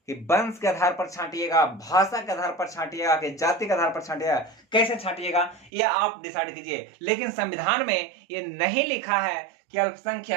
कि वंश के आधार पर छांटिएगा, भाषा के आधार पर छांटिएगा कि जाति के आधार पर छांटिएगा, कैसे छांटिएगा ये आप डिसाइड कीजिए। लेकिन संविधान में ये नहीं लिखा है कि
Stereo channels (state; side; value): drops out; left; at 5.7 s